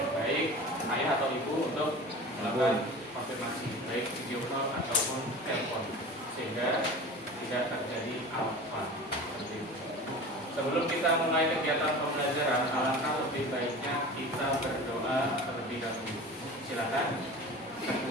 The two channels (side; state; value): both; normal; correlation 0.36